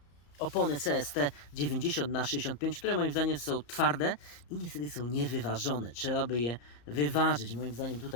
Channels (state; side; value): late; right; 34 ms